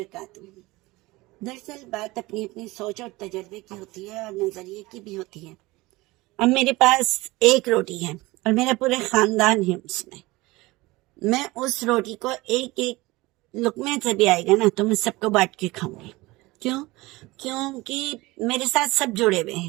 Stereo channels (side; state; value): left; quieter; 21.0 dB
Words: دراصل بات اپنی اپنی سوچ اور تجربے کی ہوتی ہے اور نظریے کی بھی ہوتی ہے۔ اب میرے پاس ایک روٹی ہے اور میرا پورا خاندان ہے اس میں اس روٹی کو ایک ایک لقمے سے بھی آئے گا نا تو میں سب کو بانٹ کے کھاؤں گی۔ کیونکہ میرے ساتھ سب جڑے ہوئے